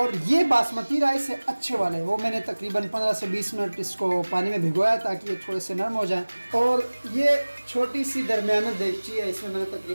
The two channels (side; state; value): both; inverted; correlation -1.00